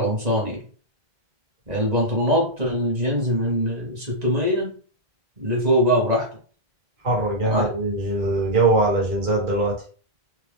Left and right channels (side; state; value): left; late; 1.9 ms